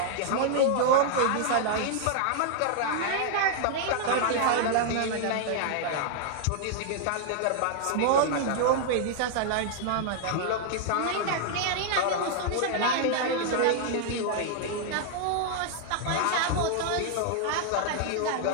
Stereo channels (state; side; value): different; both; correlation -0.01